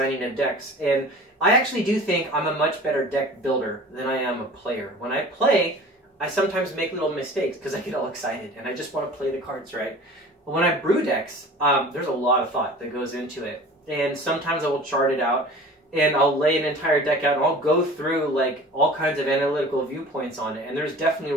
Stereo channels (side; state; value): both; normal; correlation 0.41